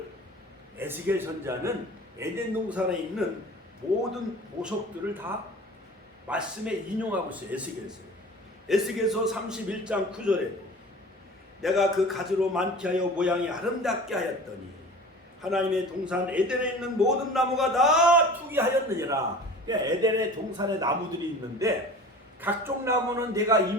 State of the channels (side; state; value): both; normal; correlation 0.40